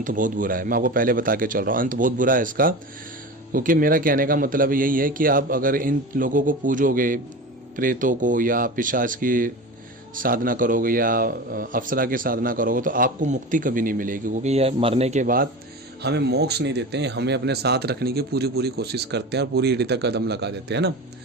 बहुत बुरा है। मैं आपको पहले बता के चल रहा हूँ, अंत बहुत बुरा है इसका। क्योंकि मेरा कहने का मतलब यही है कि आप अगर इन लोगों को पूजोगे, प्रेतों को या पिशाच की साधना करोगे या अप्सरा की साधना करोगे, तो आपको मुक्ति कभी नहीं मिलेगी। क्योंकि यह मरने के बाद हमें मोक्ष नहीं देते हैं, हमें अपने साथ रखने की पूरी कोशिश करते हैं और पूरी एड़ी तक कदम लगा देते हैं ना।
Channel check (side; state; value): both; normal; correlation 0.29